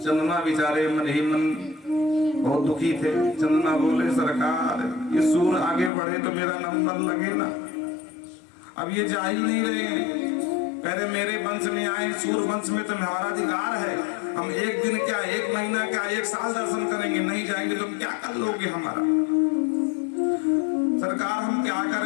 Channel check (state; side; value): drops out; right; at 5.9 s